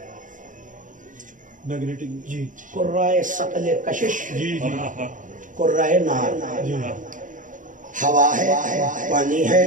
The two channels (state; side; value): late; left; 0.38 ms